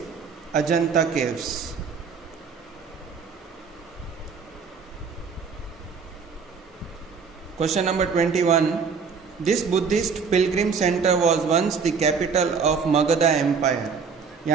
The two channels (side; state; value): left; quieter; 5.7 dB